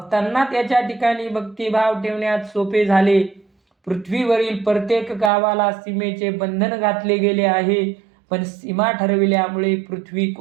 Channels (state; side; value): drops out; left; at 5.3 s